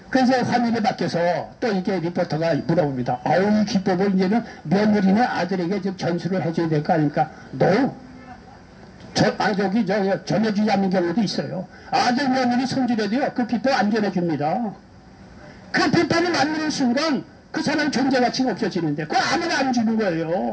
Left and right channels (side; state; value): both; identical; correlation 1.00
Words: 그래서 화면에 바뀌어서 또 이게 리포터가 물어봅니다. 이 기법을 이제는 며느리나 아들에게 좀 전수를 해줘야 될 거 아닙니까? 전해주지 않는 경우도 있어요. 아들 며느리 손질해도요, 그 비법 안 전해줍니다. 그 비법을 만드는 순간 그 사람 존재 가치가 없어지는데 그거 아무나 안 주는